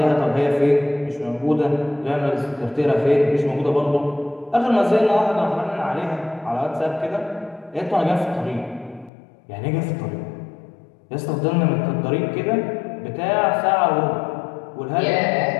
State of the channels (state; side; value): drops out; right; at 9.1 s